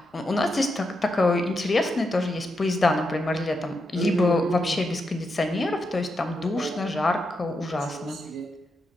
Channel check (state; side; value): normal; both; correlation 0.84